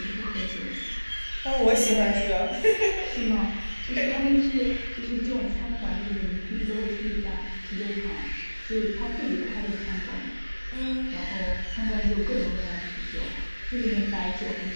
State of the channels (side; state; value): both; inverted; correlation -1.00